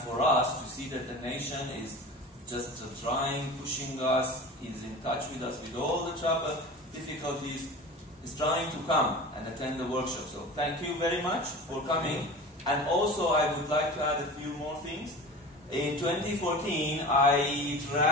us to see that the nation is just trying, pushing us, is in touch with us with all the trouble, difficulties, is trying to come and attend the workshop. So thank you very much for coming. And also I would like to add a few more things. In 2014, I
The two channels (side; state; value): both; normal; correlation 0.35